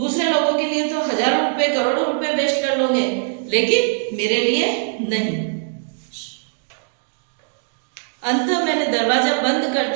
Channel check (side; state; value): left; silent; digital silence